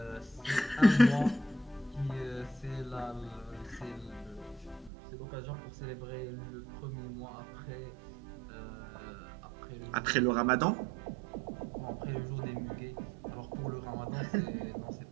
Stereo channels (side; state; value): left; drops out; at 4.9 s